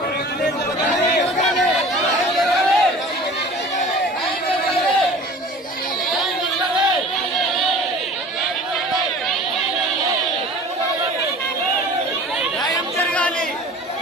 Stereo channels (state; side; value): normal; both; correlation 0.43